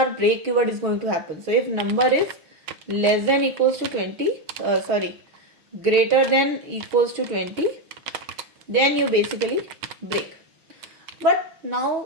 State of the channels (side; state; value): left; late; 6.3 ms